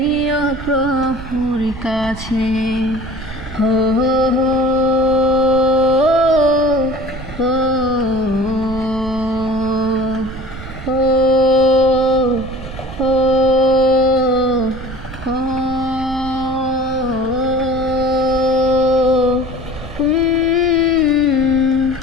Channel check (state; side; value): noise; right; rumble, 12 dB below the sound